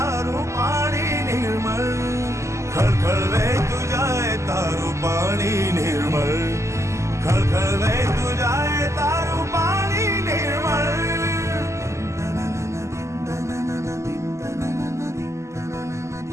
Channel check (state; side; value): late; left; 0.14 ms